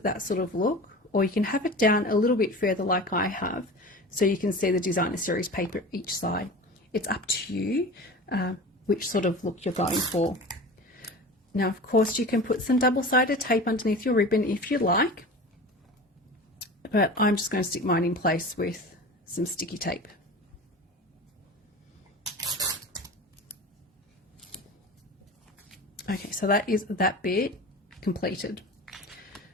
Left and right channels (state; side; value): normal; both; correlation 0.34